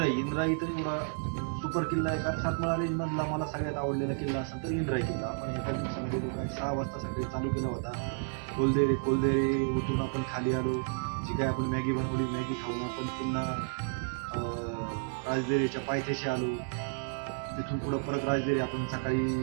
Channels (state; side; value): silent; left; 57 dB below the other